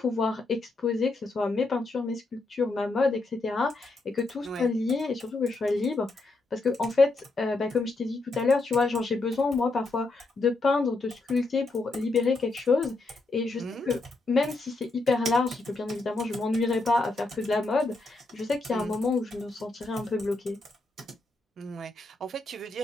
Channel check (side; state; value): right; quieter; 3.2 dB